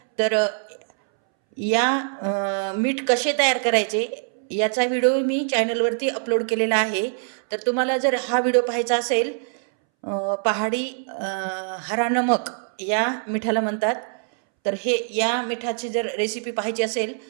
तर या मीठ कसे तयार करायचे याचा व्हिडिओ मी चॅनलवरती अपलोड केलेला आहे. तर तुम्हाला जर हा व्हिडिओ पाहायचा असेल, पहाडी हरा नमक या मिठाला म्हणतात, तर या मिठाची जर रेसिपी पाहायची असेल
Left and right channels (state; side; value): silent; left; 63 dB below the other